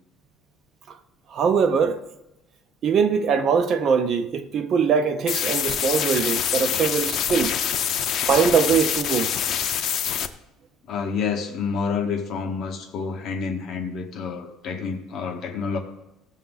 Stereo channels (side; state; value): both; normal; correlation 0.55